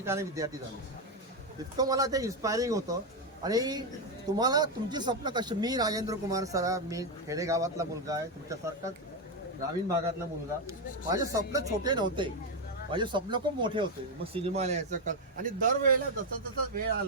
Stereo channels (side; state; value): both; normal; correlation 0.05